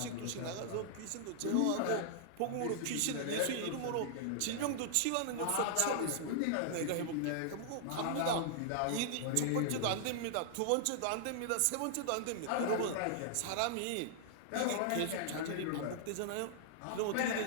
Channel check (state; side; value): different; both; correlation -0.01